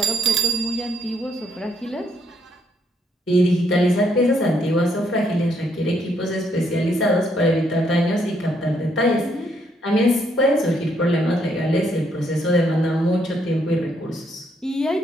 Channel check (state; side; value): normal; both; correlation 0.72